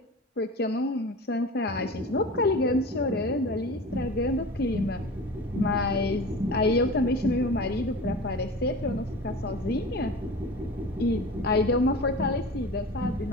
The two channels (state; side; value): normal; both; correlation 0.35